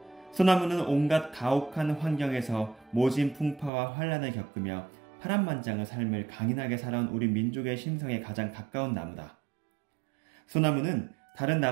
소나무는 온갖 가혹한 환경에서 모진 풍파와 환란을 겪으며 파란만장의 삶을 강인하게 살아온 우리 민족의 심성에 가장 가까운 나무다. 소나무는 다른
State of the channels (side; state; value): left; drops out; at 3.7 s